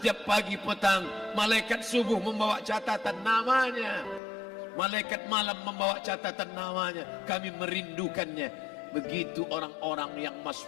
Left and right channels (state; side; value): drops out; right; at 4.2 s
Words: pagi petang, malaikat subuh membawa catatan namanya, malaikat malam membawa catatan namanya. Kami merindukannya. Begitu orang-orang yang